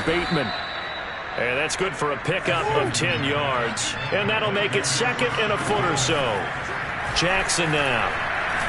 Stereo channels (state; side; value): identical; both; correlation 1.00